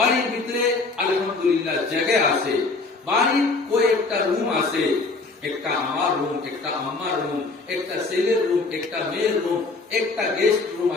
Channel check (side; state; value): right; quieter; 3.8 dB